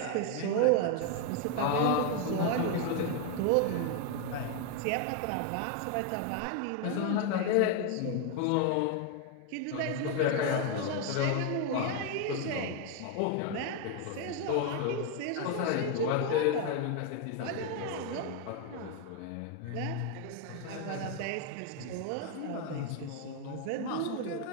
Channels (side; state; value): both; different; correlation 0.01